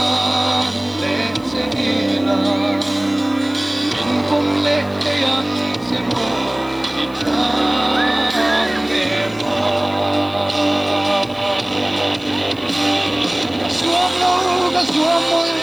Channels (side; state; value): left; noise; hiss, 27 dB below the sound